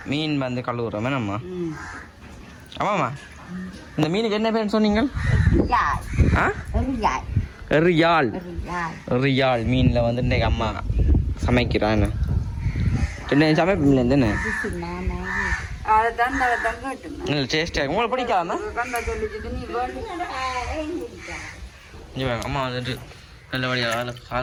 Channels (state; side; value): identical; both; correlation 1.00